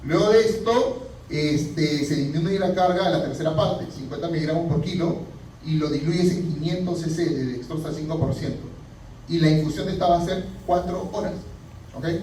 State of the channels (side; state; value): both; identical; correlation 1.00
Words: Luego de esto, se disminuye la carga a la tercera parte, 50 miligramos por kilo, y lo diluyes en 500 cc de dextrosa al 5%. Y la infusión de esta va a ser 4 horas.